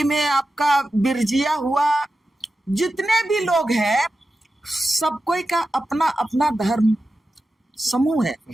में आपका बिरजिया हुआ, जितने भी लोग हैं सब कोई का अपना अपना धर्म समूह है,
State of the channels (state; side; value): normal; both; correlation 0.92